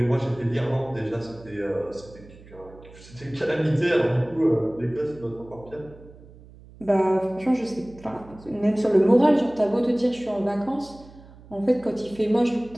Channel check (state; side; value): noise; right; hum, 21 dB below the sound